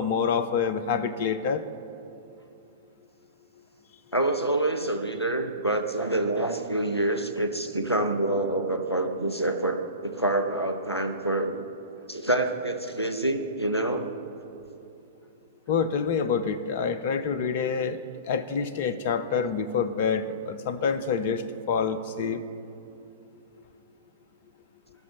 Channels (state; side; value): inverted; both; correlation -0.34